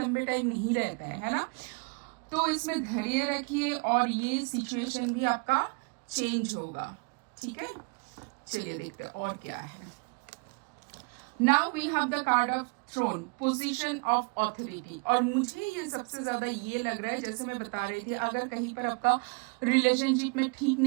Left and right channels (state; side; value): quieter; left; 34.2 dB